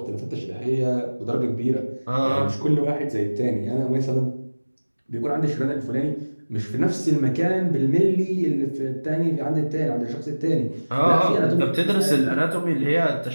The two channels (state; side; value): inverted; both; correlation -1.00